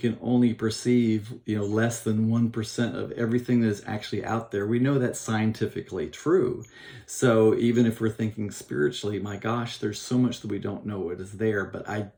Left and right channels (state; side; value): identical; both; correlation 1.00